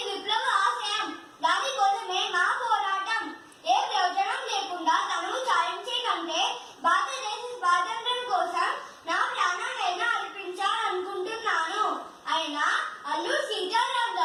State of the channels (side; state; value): both; identical; correlation 1.00